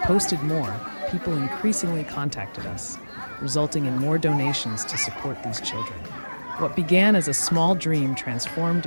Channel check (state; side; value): inverted; both; correlation -1.00